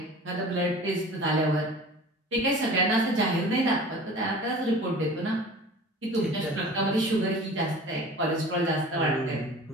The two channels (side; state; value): both; normal; correlation 0.41